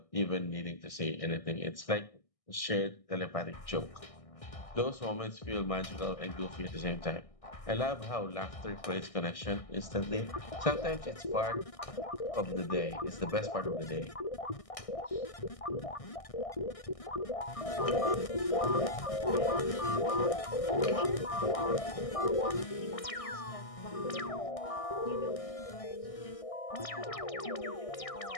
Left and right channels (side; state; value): right; late; 1.6 ms